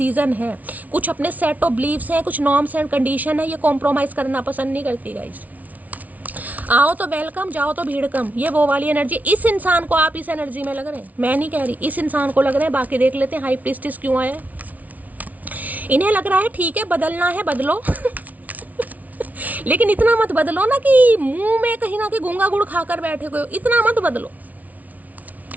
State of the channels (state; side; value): late; left; 0.073 ms